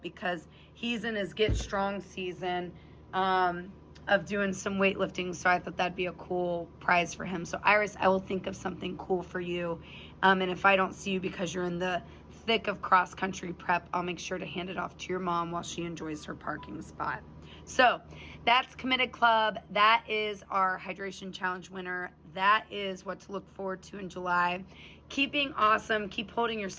because he's in his Get Strong season of doing some weightlifting, so I thought that'd be a cool prize for him. So Iris, I will think of something cool for you, and if I don't see you because you're in the thick of cross-country prep, I'll make sure to hand it off to your mom while she enjoys her parking spot. So that's Committed Club. That is our hydration challenge winner. That is what to look forward to in July. Keep being awesome. Keep holding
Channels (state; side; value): identical; both; correlation 1.00